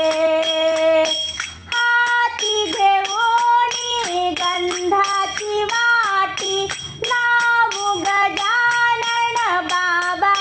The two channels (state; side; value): identical; both; correlation 1.00